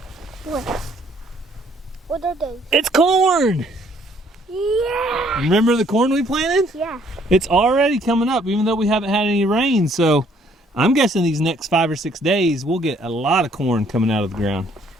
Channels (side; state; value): both; normal; correlation 0.64